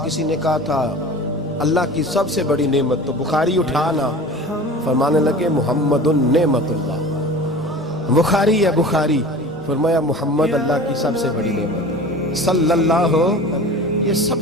کسی نے کہا تھا اللہ کی سب سے بڑی نعمت، تو بخاری اٹھانا، فرمانے لگے محمد نعمت اللہ، بخاری ہے بخاری، فرمایا محمد اللہ کی سب سے بڑی نعمت، صلی اللہ ہو، یہ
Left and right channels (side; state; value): both; normal; correlation 0.38